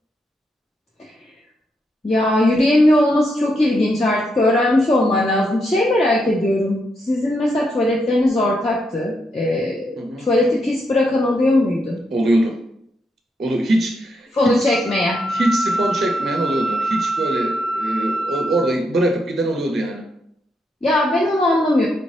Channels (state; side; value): normal; both; correlation 0.80